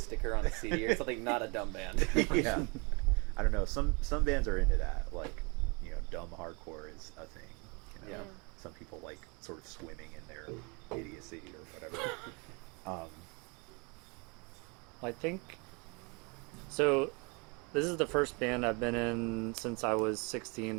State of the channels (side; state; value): left; quieter; 31.1 dB